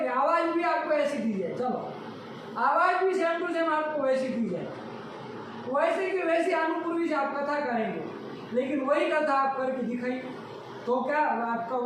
आवाज भी आपको ऐसी दी जाए, चलो आवाज भी सेम टू सेम आपको वैसी दी जाए, वैसे की वैसी अनुपूर्वी से आप कथा करेंगे, लेकिन वही कथा आप करके दिखाइए तो क्या आपका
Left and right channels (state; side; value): identical; both; correlation 1.00